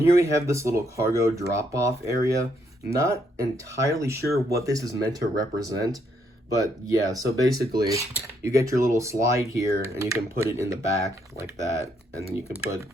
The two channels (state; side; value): normal; both; correlation 0.74